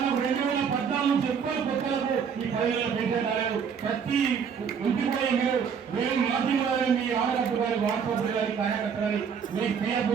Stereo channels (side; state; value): left; quieter; 6.8 dB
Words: 2014 చెప్పాలి కొత్తలకు ఈ 10,000 పెన్షన్ రాలేదు. ప్రతి ఇంటికి పోయి మేము మాధ్యమాలని మీ ఆడగట్టు కానీ వాట్సాప్ కానీ కార్యకర్త కానీ మీకు పిఎఫ్